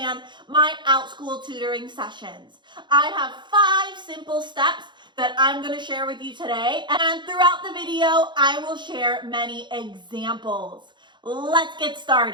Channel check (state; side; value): late; left; 0.22 ms